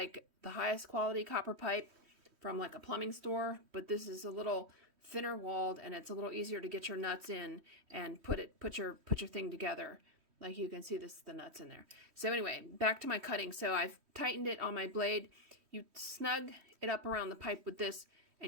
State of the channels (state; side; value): late; left; 3.1 ms